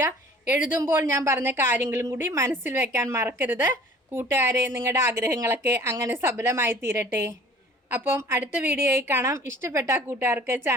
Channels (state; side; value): normal; both; correlation 0.49